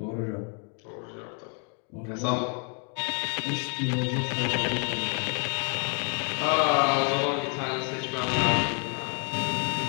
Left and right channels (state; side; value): quieter; right; 39.9 dB